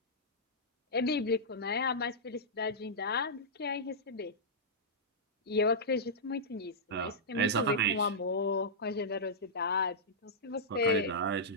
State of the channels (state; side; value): normal; both; correlation -0.12